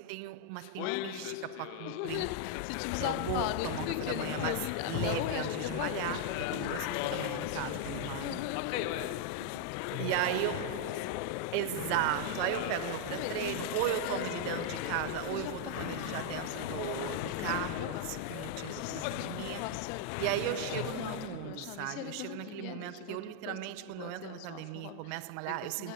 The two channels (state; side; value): different; both; correlation 0.00